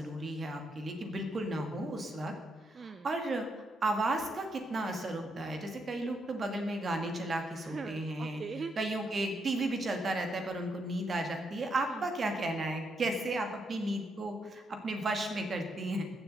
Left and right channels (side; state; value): both; normal; correlation 0.78